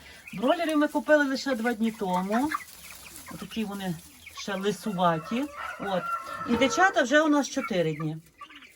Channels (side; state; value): both; identical; correlation 1.00